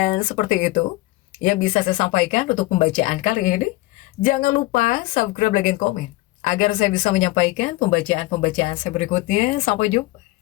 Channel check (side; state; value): right; quieter; 19.8 dB